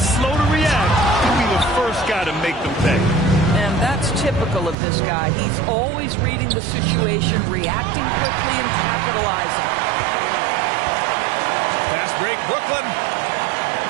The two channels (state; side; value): drops out; left; at 4.8 s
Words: slow to react, he'll be the first guy to make them pay. And that's typical of this guy. He's always reading the situation, reacting quickly, and capitalizing. Fast break, Brooklyn.